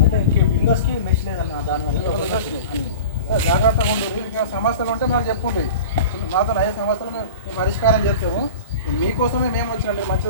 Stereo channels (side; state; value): both; inverted; correlation -0.36